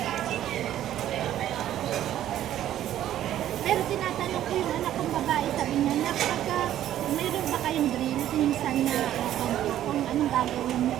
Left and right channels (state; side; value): quieter; left; 12.0 dB